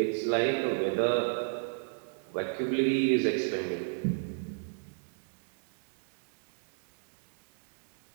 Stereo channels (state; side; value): silent; left; digital silence